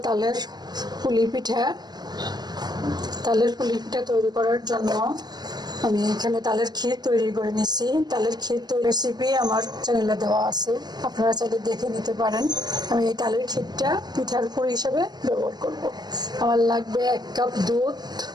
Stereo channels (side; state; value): left; late; 0.20 ms